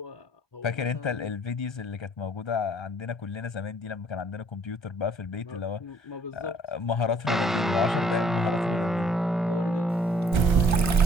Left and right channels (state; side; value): normal; both; correlation 0.60